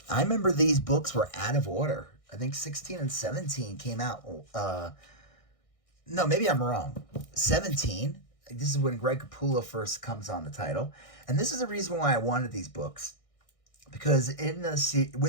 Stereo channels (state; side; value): late; right; 1.6 ms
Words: I remember these books were out of order. I think 16 and 17 came out. No, maybe I'm wrong. 17. This is when Greg Capullo first comes on the title. And this is the reason why I wanted these books. Because within